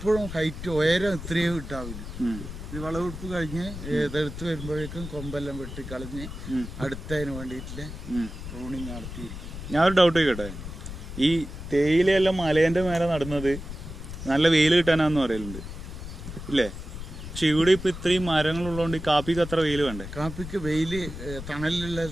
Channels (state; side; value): noise; left; rumble, 10 dB below the sound